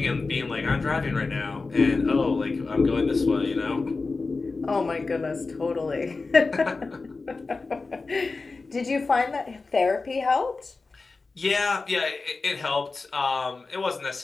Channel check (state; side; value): quieter; right; 3.9 dB